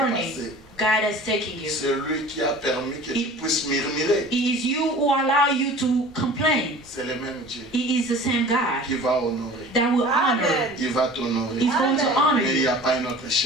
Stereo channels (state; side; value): normal; both; correlation 0.43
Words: passer. God has taken you. C'est lui qui a permis que tu puisses murmurer. It is you who allow you to complain. C'est le même Dieu It is the same God qui va honorer. that will honor. Il va t'honorer. He's going to honor Mais il n'y you. a pas un autre